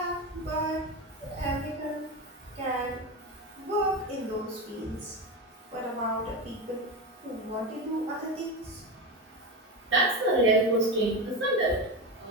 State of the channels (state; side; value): normal; both; correlation 0.18